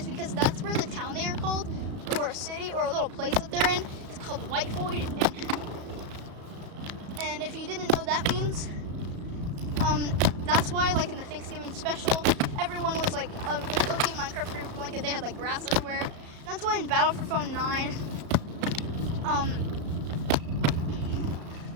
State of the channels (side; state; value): left; late; 34 ms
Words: because that's where the town they are called, or a city, or a little place that they're in, is called White Void. And if you didn't know what that means, that's why, like, in the Thanksgiving special, everyone was, like, just cooking Minecraft for a blanket. They had, like, grass everywhere. And that's why in Battle for Phone 9,